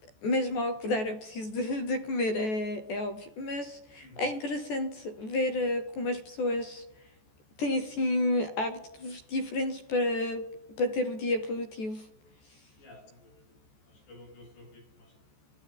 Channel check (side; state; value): right; late; 14 ms